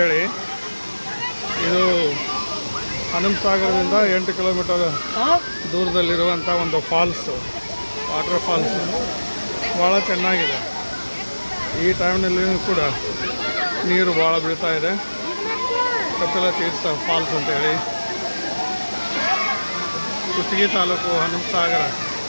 ಇದು ಹನುಮಸಾಗರದಿಂದ 8 ಕಿಲೋಮೀಟರ್ ದೂರದಲ್ಲಿರುವಂಥ ಒಂದು ಫಾಲ್ಸು, ವಾಟರ್ ಫಾಲ್ಸು. ಭಾಳ ಚೆನ್ನಾಗಿದೆ. ಈ ಟೈಮ್ನಲ್ಲಿ ಕೂಡ ನೀರು ಭಾಳ ಬೀಳ್ತಾ ಇದೆ. ಕಪಿಲ ತೀರ್ಥ ಫಾಲ್ಸ್ ಅಂತೇಳಿ ಕುಷ್ಟಗಿ ತಾಲೂಕು ಹನುಮಸಾಗರದಲ್ಲಿ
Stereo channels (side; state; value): both; inverted; correlation -1.00